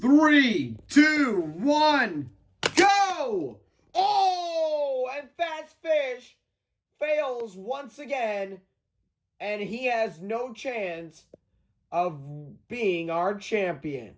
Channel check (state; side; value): identical; both; correlation 1.00